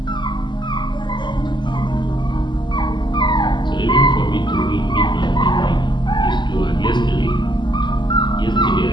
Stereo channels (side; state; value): right; late; 0.22 ms